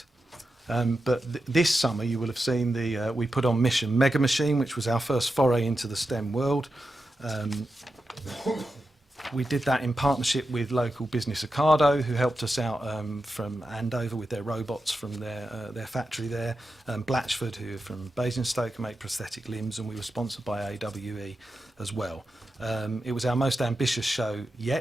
But this summer you will have seen we put on Mission Mega Machine, which was our first foray into the STEM world. We did that in partnership with local business Ocado, who helped us out from Andover with their robots from their factory there, Blatchford, who are from Basingstoke, who make prosthetic limbs, and we were sponsored by AWE as well. It was our most ambitious show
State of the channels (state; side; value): normal; both; correlation 0.90